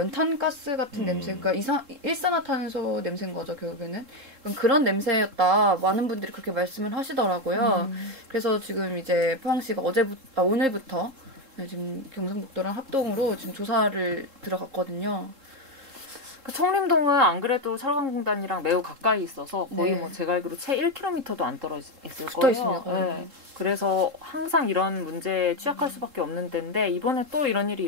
같은 냄새, 그러니까 일산화탄소 냄새인 거죠 결국에는. 그런 냄새였다. 많은 분들이 그렇게 말씀을 하시더라고요. 그래서 지금 이제 포항시가 오늘부터 지금 경상북도랑 합동으로 지금 조사를 들어갔거든요. 그 청림동은 안 그래도 철강공단이랑 매우 가까이 있어서 거의 네. 뭐 제가 알기로 채 1km도 안 떨어져 있을 붙어 거예요. 있습니다, 거의. 네. 그래서 항상 이런 문제에 취약할 수밖에 없는 데인데 이번에 또 이런 일이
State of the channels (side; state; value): left; late; 3.7 ms